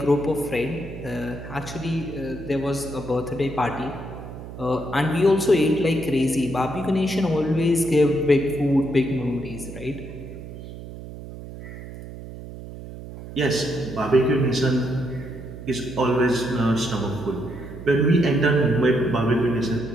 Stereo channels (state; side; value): noise; right; hum, 12 dB below the sound